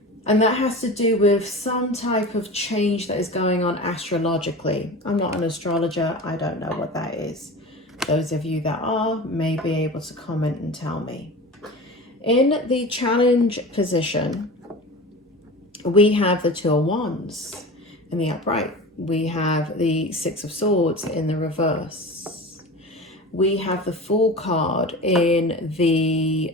And that has to do with some type of change that is going on astrologically. I'm not an astrologer. I don't know what that is. Those of you that are may be able to comment and tell me. In the challenge position, we have the Two of Wands in the upright. We have the Six of Swords in the reverse. We have the Fool card in the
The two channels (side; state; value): both; normal; correlation 0.33